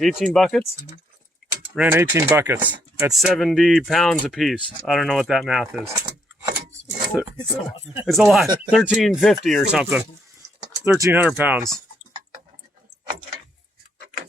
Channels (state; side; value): normal; both; correlation 0.73